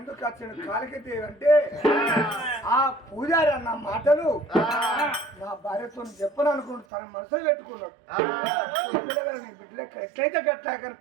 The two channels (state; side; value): drops out; left; at 6.9 s